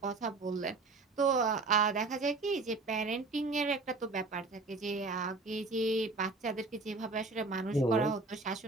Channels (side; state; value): left; quieter; 3.7 dB